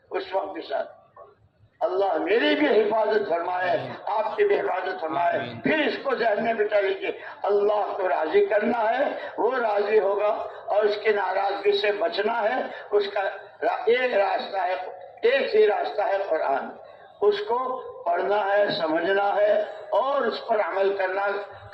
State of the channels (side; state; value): both; identical; correlation 1.00